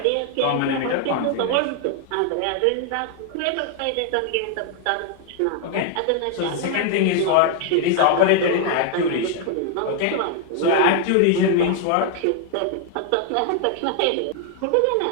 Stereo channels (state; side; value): different; both; correlation 0.00